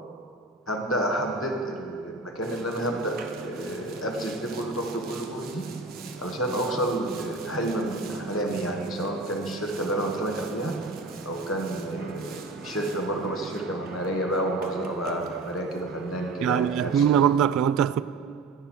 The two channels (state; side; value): quieter; left; 3.5 dB